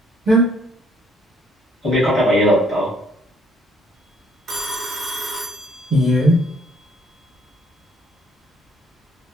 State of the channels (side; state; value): both; normal; correlation 0.65